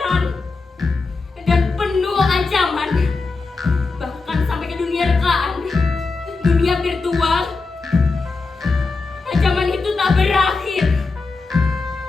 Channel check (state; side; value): quieter; right; 4.0 dB